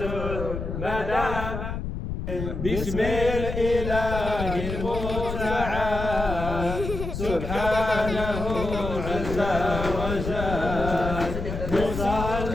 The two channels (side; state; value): left; noise; rumble, 5 dB below the sound